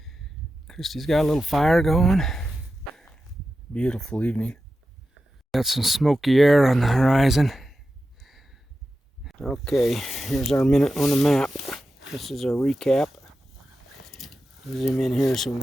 Kristy's got a little fire going. Beautiful evening. Got some smoky air on the horizon. Okay, here's our minute on the map. This is our recap. Zoom in here so we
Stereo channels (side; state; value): both; normal; correlation 0.91